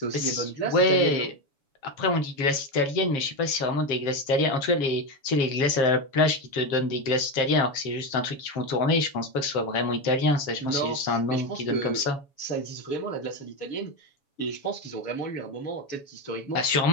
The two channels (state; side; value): late; right; 7.1 ms